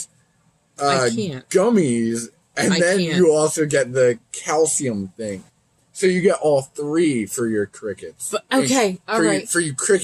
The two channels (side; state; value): both; identical; correlation 1.00